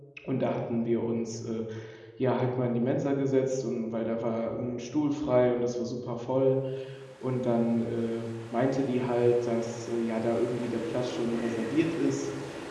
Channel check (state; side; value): identical; both; correlation 1.00